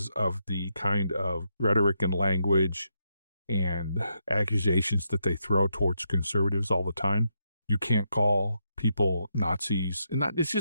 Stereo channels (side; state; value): both; inverted; correlation -0.81